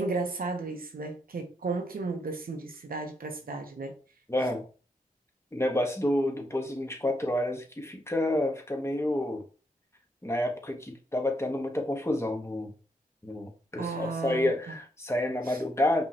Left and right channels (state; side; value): normal; both; correlation 0.77